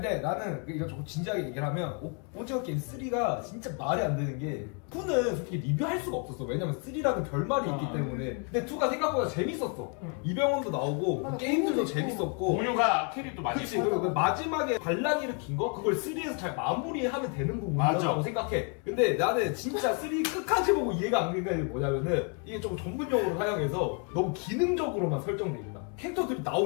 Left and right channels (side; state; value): right; quieter; 38.6 dB